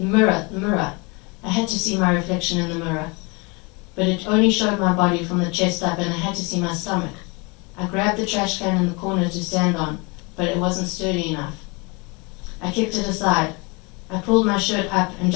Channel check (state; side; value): quieter; right; 28.9 dB